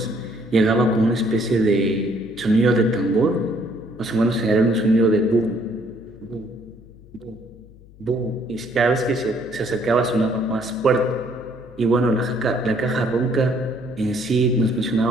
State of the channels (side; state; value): left; noise; hum, 23 dB below the sound